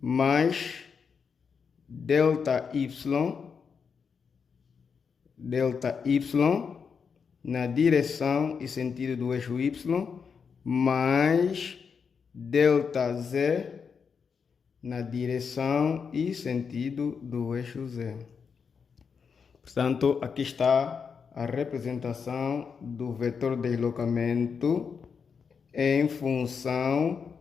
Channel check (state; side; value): quieter; right; 6.1 dB